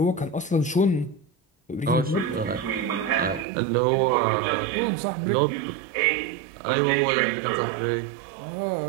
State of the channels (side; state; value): left; drops out; at 3.5 s